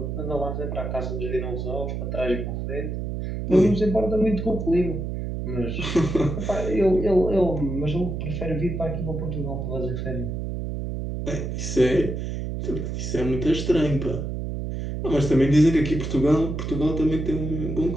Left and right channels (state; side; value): noise; right; hum, 4 dB below the sound